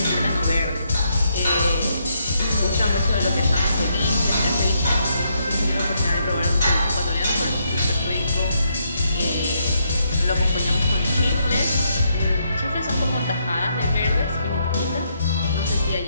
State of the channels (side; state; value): both; inverted; correlation -0.76